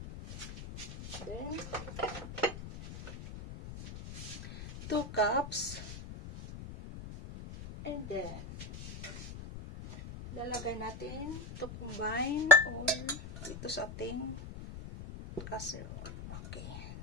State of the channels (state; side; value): noise; left; rumble, 11 dB below the sound